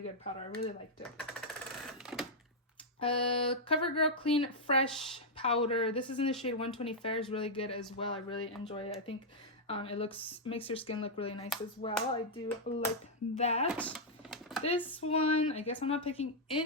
powder. I really liked it. CoverGirl Clean Fresh powder. This is in the shade 120 Fair. Is really good as well. I really enjoy it. I think it makes your skin look really nice as well. I do like that. This one, I guess I'm not picking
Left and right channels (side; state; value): both; normal; correlation -0.05